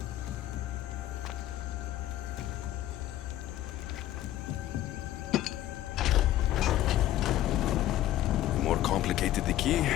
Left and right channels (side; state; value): right; quieter; 13.6 dB